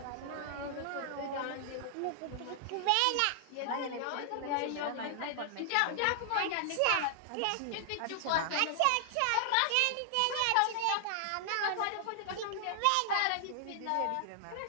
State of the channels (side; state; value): both; different; correlation 0.00